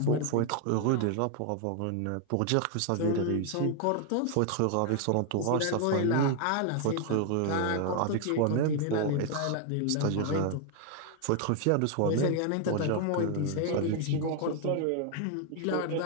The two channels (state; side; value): different; both; correlation 0.00